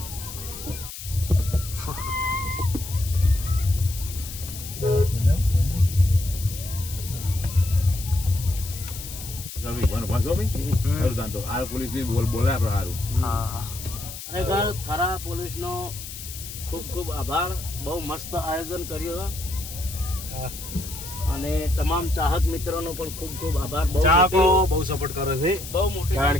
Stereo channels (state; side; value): noise; left; hiss, 11 dB below the sound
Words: ખરેખર થરા પોલીસનો ખૂબ ખૂબ આભાર. બહુ મસ્ત આયોજન કર્યું અને તમામ ચાહક મિત્રોનો પણ ખૂબ ખૂબ આભાર. ચાહકો બહુ સપોર્ટ કરે છે, બહુ મોટી કારણ